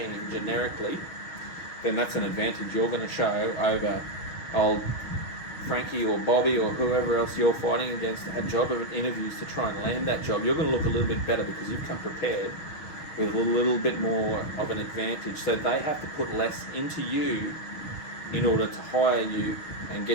generically, then that's an advantage you're going to show over old Frankie or Bobby or whoever else you're fighting against at job interviews to try and land that job. You're going to look a little bit better because you've come prepared with a little bit more of an advantage. So they have to put less into you in order to hire you and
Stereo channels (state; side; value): late; right; 6.3 ms